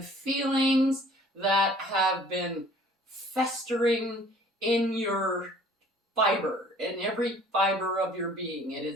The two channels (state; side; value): normal; both; correlation 0.53